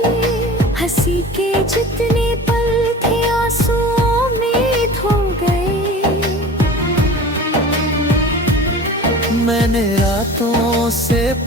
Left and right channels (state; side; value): normal; both; correlation 0.38